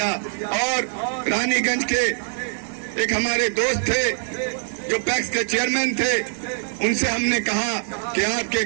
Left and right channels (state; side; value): silent; left; 62 dB below the other